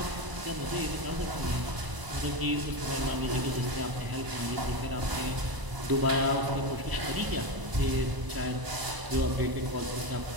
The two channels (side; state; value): left; late; 1.0 ms